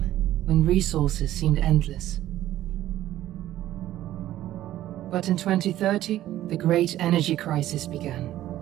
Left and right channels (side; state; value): left; quieter; 13.6 dB